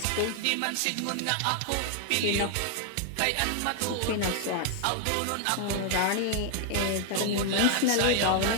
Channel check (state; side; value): different; both; correlation 0.00